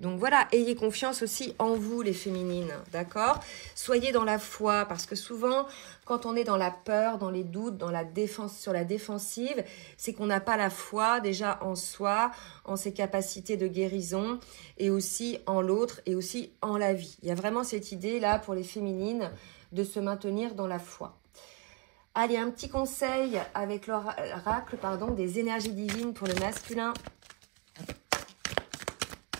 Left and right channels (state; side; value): quieter; left; 28.3 dB